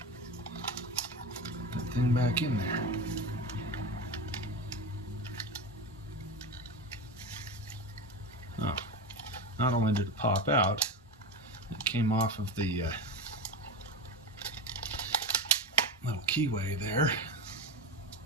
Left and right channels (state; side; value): normal; both; correlation 0.22